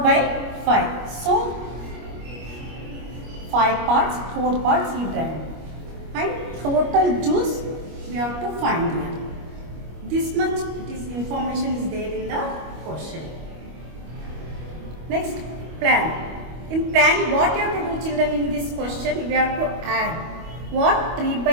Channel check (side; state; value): left; late; 25 ms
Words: So 5 parts, 4 parts he drank. And total juice we have to find here. This much information is there in the question. Next, plan. In plan, what you have to do children in this question? We have to add what?